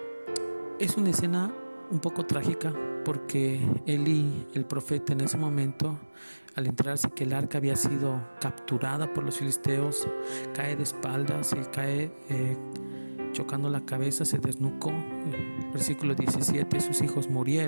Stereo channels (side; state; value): both; inverted; correlation -1.00